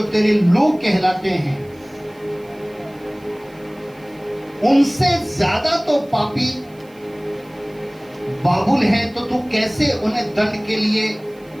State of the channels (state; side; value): noise; right; hiss, 30 dB below the sound